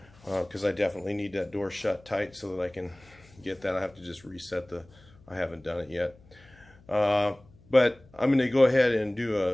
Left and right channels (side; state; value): left; noise; hum, 26 dB below the sound